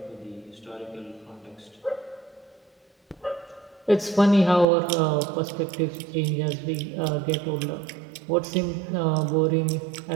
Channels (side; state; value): left; drops out; at 4.7 s